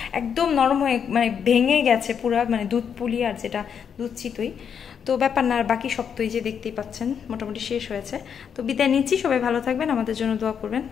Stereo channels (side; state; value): right; quieter; 7.5 dB